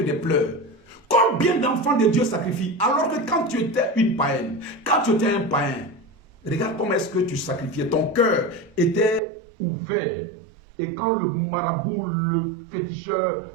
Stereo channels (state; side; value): drops out; left; at 9.2 s